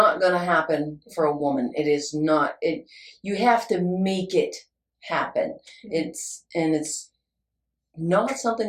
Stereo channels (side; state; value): both; identical; correlation 1.00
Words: going to happen for a woman. It is not. You have to make it happen. It's not